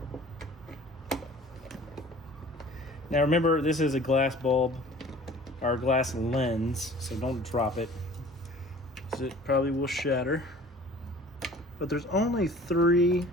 Now remember, this is a glass bulb or a glass lens, so don't drop it, because it probably will shatter. But there's only three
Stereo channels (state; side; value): normal; both; correlation 0.47